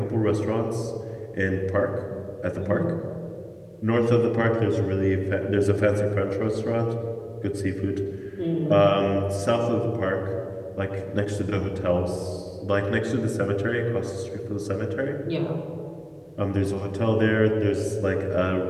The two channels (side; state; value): both; identical; correlation 1.00